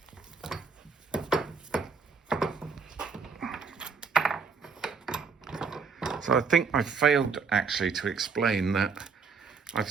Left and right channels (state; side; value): quieter; left; 5.3 dB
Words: So I think I failed actually to explain that I've